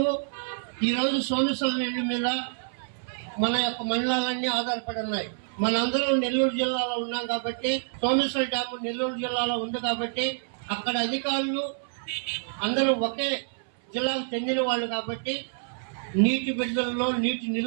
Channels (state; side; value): silent; left; 60 dB below the other